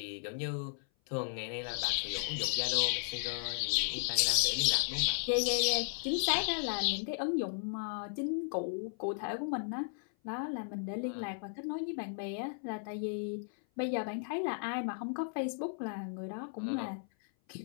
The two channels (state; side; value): silent; right; 54 dB below the other